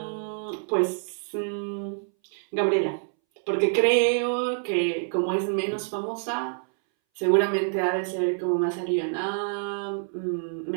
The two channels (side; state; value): left; silent; 60 dB below the other